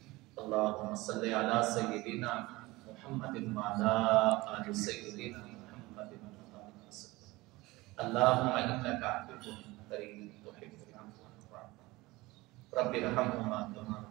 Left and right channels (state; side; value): quieter; left; 20.8 dB